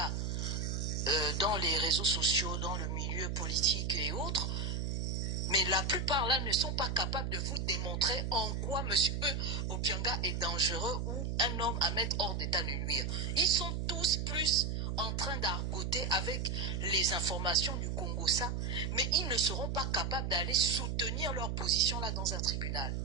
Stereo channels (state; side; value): noise; right; hum, 1 dB below the sound